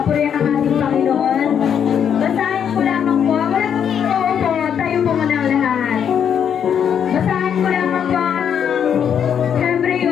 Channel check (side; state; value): right; quieter; 8.2 dB